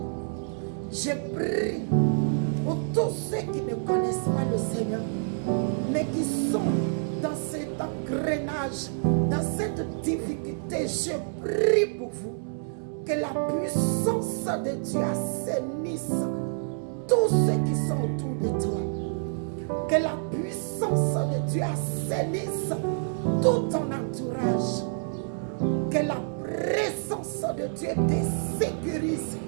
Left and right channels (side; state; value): left; silent; 60 dB below the other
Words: Je prie pour tous ceux qui ne connaissent pas le Seigneur, mais qui sont dans cet engrenage, dans cette difficulté. Je prie pour vous que la puissance de Dieu assainisse tous ceux qui sont autour de toi. Que la puissance de Dieu assainisse tout ton entourage. Que la présence de Dieu te sécurise.